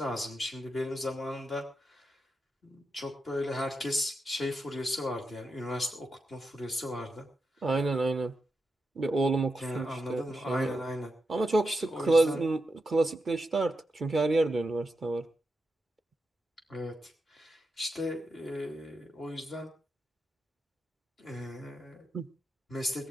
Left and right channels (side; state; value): both; normal; correlation 0.87